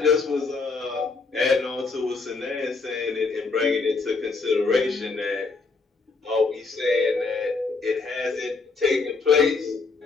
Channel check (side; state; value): right; quieter; 4.2 dB